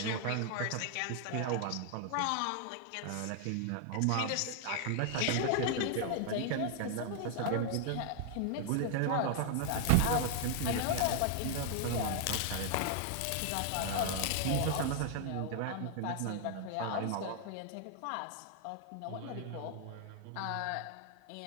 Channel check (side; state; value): both; different; correlation 0.00